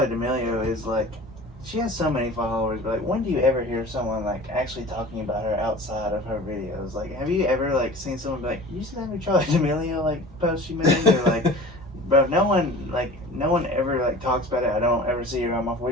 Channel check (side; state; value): both; normal; correlation 0.40